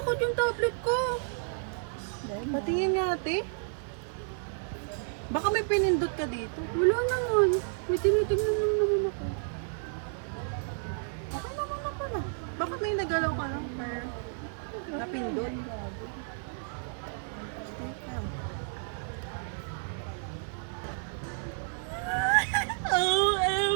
yung tablet ko. Patingin nga, ate. Baka may pinindot ka dito. Wala naman. May tinitingnan naman ako. Okay naman ako na. Baka may nagalaw ka lang pero napindot.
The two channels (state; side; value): silent; left; 57 dB below the other